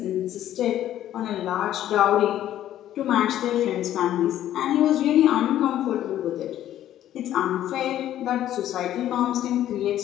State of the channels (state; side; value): quieter; right; 12.1 dB